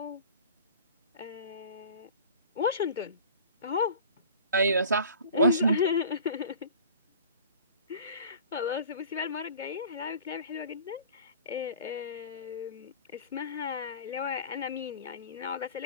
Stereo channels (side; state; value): both; inverted; correlation -0.43